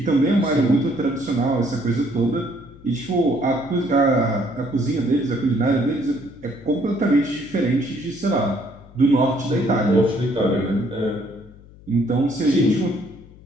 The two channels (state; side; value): noise; left; hum, 22 dB below the sound